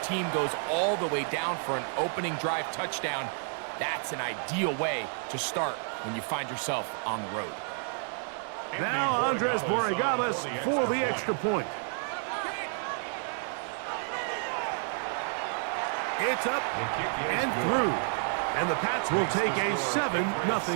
goes all the way down for an opening drive touchdown. That's an ideal way to start when you find yourself on the road. Now Andres Borregales for the extra point. It's up and through. And the Pats will take a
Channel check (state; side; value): silent; left; 58 dB below the other